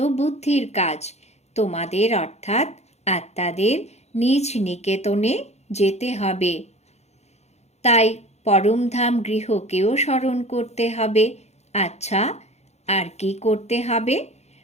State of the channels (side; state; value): right; late; 0.32 ms